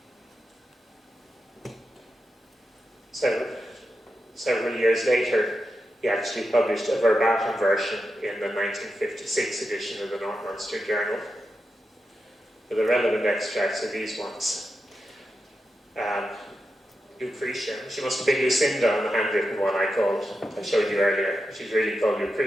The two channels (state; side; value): normal; both; correlation 0.88